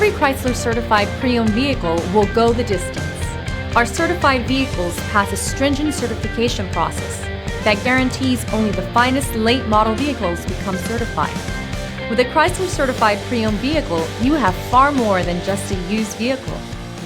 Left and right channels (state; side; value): identical; both; correlation 1.00